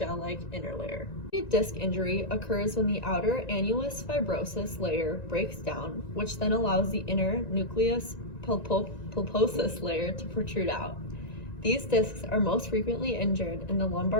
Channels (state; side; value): late; right; 1.9 ms